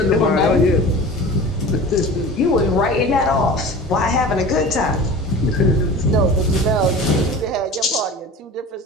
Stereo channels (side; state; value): both; normal; correlation 0.37